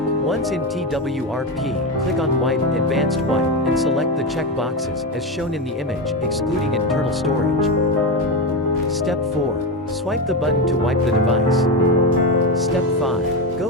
Once in TWRP, click on Wipe, Advanced Wipe, and select the check boxes, as shown in the image, excluding internal storage. Step 4. Swipe the button to wipe the device. Step 5. Go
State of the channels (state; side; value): normal; both; correlation 0.14